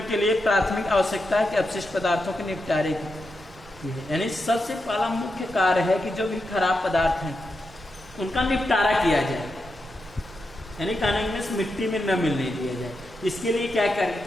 के लिए प्राथमिक आवश्यकता है कि अपशिष्ट पदार्थों के निपटारे की है, यानी सबसे पहला मुख्य कार्य है कि जो भी खराब पदार्थ हैं उनका निपटारा किया जाए, यानी कानून मिट्टी में न मिलने दिया जाए। इसके लिए क्या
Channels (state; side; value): normal; both; correlation 0.86